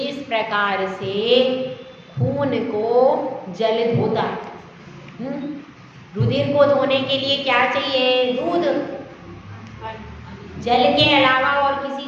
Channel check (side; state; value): both; identical; correlation 1.00